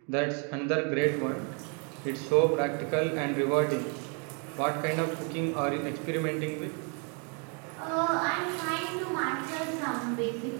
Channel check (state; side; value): quieter; left; 37.6 dB